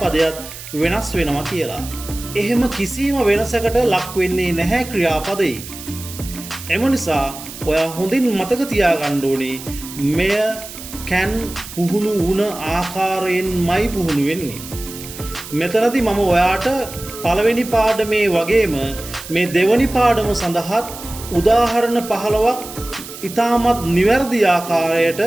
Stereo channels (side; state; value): right; noise; hiss, 13 dB below the sound